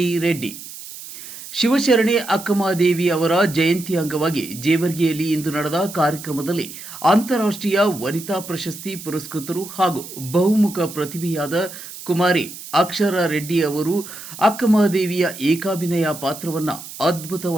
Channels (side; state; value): right; noise; hiss, 13 dB below the sound